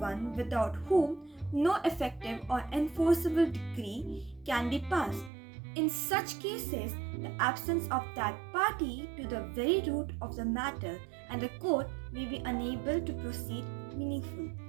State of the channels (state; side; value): drops out; left; at 5.3 s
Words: without whom no effective or enforceable decree can be passed. In such cases, the absence of that party to the very root of the matter and the court may be unable to proceed meaningfully.